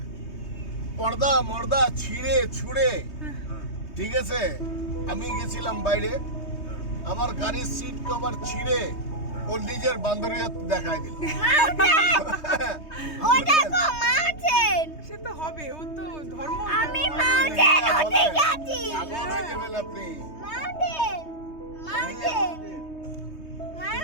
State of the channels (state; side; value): late; right; 3.2 ms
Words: পর্দা মর্দা ছিঁড়ে ছুঁড়ে ঠিক আছে আমি গেছিলাম বাইরে আমার গাড়ির সিট কভার ছিঁড়ে ও নিজের বান্ধবীর দেখায় দিল ও দেখো মাউন্টেন সে তো হবে ও তো ধর্ম আমি মাউন্টেন ওতে গেছি পাগল হয়ে যাবেন আপনি মাউন্টেন মাউন্টেন